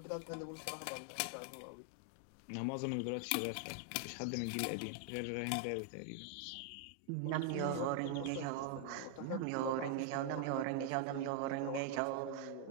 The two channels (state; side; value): different; both; correlation 0.00